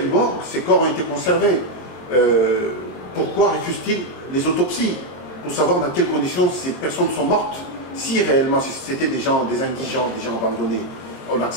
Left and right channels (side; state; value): right; late; 23 ms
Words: morgue ces corps ont été conservés. Pourquoi refuse-t-il les autopsies? Pour savoir dans quelles conditions ces personnes sont mortes. Si réellement c'était des gens, des indigents, des gens abandonnés, on